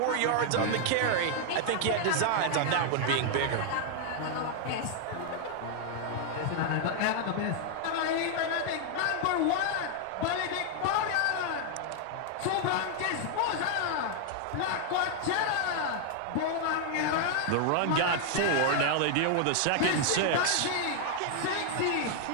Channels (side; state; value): both; different; correlation 0.00